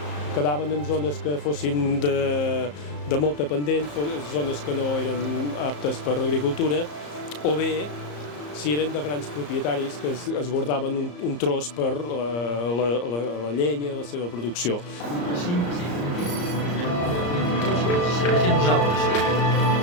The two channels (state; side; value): late; right; 34 ms